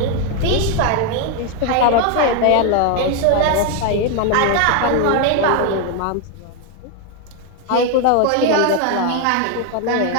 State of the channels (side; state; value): both; different; correlation 0.01